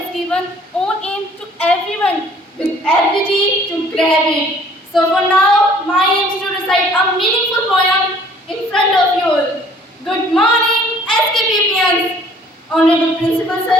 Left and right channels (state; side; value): normal; both; correlation 0.56